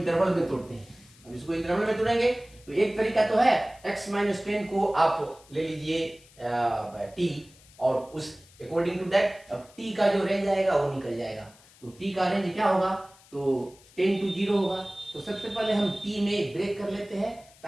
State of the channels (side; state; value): left; noise; hiss, 26 dB below the sound